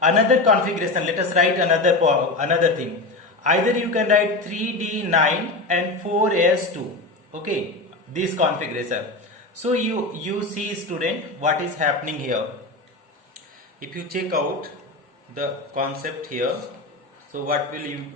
Another configuration. Let us write another thing. Either you can write 3d9 and 4s2. Okay, this configuration. So you see, student, what is happening here. If you check out the concept here, so what you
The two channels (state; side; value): quieter; right; 3.1 dB